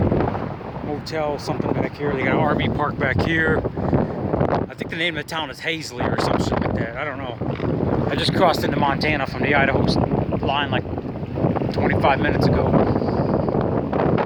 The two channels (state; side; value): identical; both; correlation 1.00